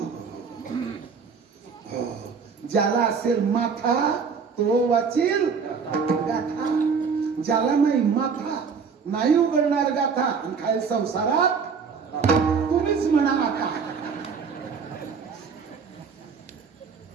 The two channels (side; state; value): left; quieter; 5.8 dB